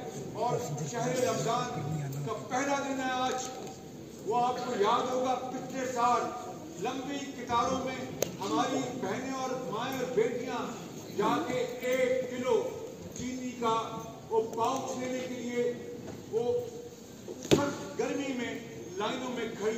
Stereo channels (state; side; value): identical; both; correlation 1.00